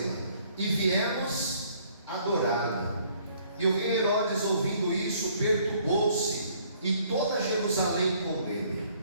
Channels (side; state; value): both; inverted; correlation -0.62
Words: e viemos adorá-la. E o rei Herodes, ouvindo isso, perturbou-se, e toda Jerusalém com ele.